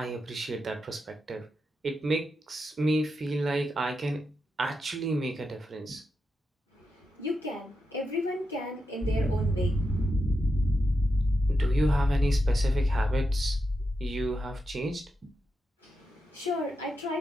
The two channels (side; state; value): both; normal; correlation 0.87